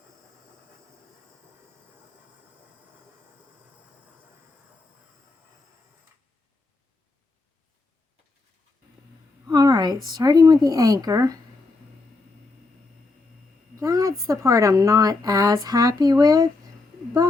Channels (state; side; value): quieter; right; 3.5 dB